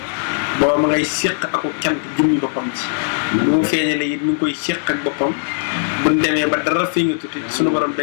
booba ma ngay séq aku cant jëmmi boppam ci lu mu feeñale it mi ngi koy séq ak boppam buñ demee ba dara feeña tuuti suñu borom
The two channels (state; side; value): silent; right; digital silence